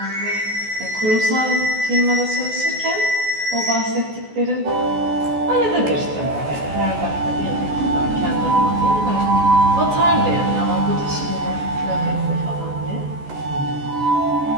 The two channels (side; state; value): left; late; 14 ms